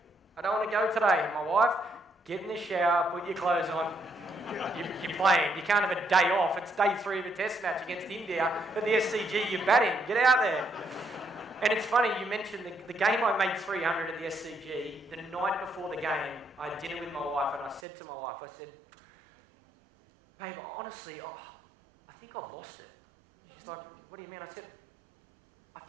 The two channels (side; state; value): left; drops out; at 17.8 s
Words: I don't want to go today. And my wife, get in the shower, put your clothes on. You're playing. You can't have a day off. It's day 3 of a test match against India. At the SCG, you're batting. Get out there. And it's funny, you mentioned the game I made 300 at the SCG. The night before the game, I had dinner with my wife and I said to my wife, I said, babe, honestly, I think I've lost it. She's like, what do you mean? I said, I